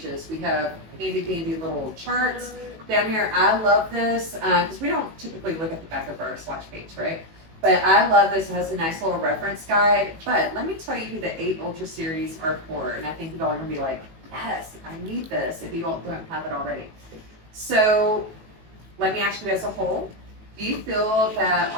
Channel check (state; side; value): late; left; 18 ms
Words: we have handy dandy little charts down here. I love this because we don't typically look at the back of our swatch page, right? But I love this. It has a nice little reference guide. But let me tell you who the 8 Ultra series are for. And I think you all are going to be like, yes, I need this if you all don't have it already. So let me ask you as a whole, do you feel that